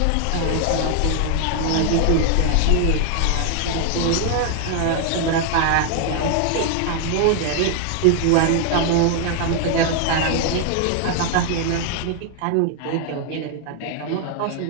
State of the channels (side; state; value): both; different; correlation 0.00